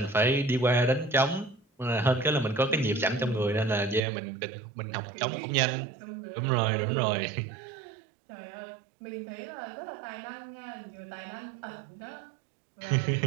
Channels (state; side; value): drops out; left; at 4.0 s